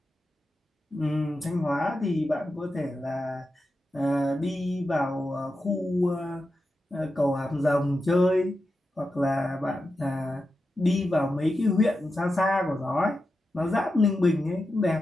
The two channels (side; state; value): both; normal; correlation 0.90